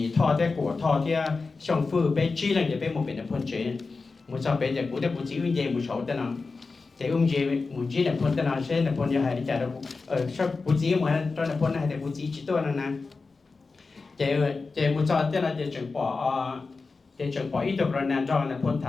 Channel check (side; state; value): right; quieter; 4.1 dB